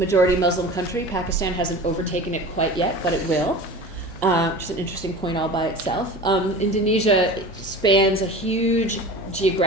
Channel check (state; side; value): normal; both; correlation 0.35